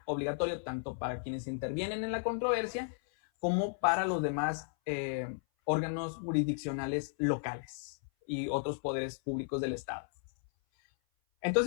obligatorio tanto para quienes intervienen en la controversia como para los demás órganos jurisdiccionales locales y otros poderes públicos del Estado.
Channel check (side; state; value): right; silent; 55 dB below the other